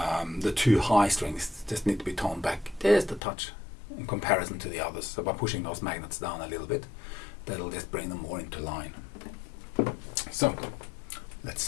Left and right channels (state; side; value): drops out; right; at 3.2 s